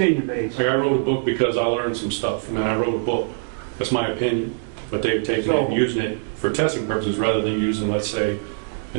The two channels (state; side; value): silent; left; digital silence